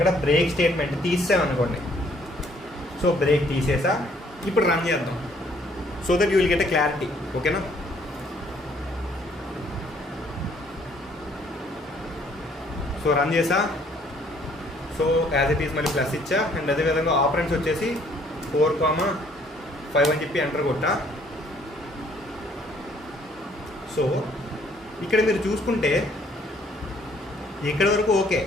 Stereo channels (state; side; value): normal; both; correlation 0.63